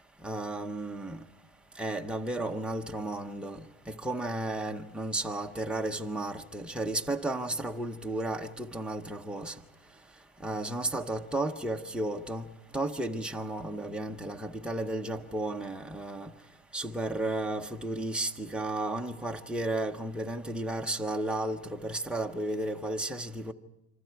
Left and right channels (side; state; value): both; normal; correlation 0.60